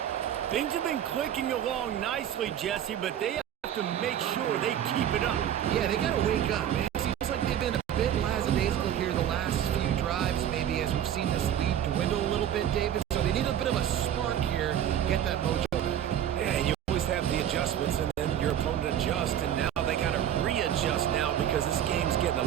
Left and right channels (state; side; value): quieter; left; 10.4 dB